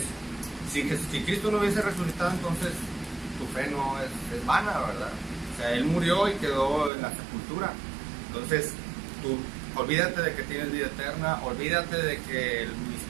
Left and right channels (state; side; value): drops out; left; at 6.9 s